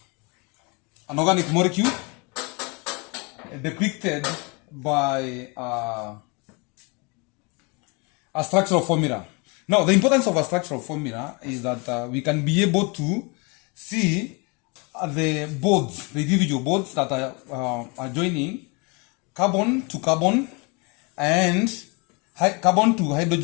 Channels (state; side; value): quieter; right; 30.4 dB